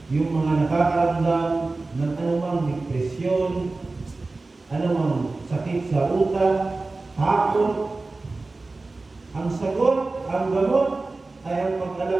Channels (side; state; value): left; quieter; 3.4 dB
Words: yung mga nakakaramdam ng anumang depresyon, anumang sakit sa utak, takot, ang sagot, ang gamot ay ang